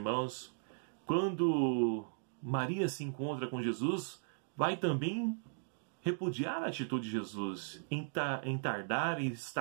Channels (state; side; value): silent; left; digital silence